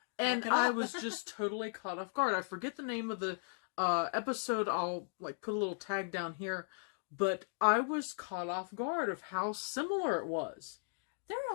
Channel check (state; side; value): silent; right; digital silence